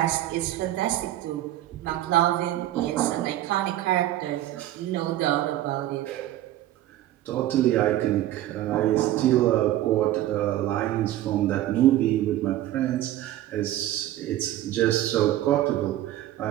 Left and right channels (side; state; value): left; quieter; 13.9 dB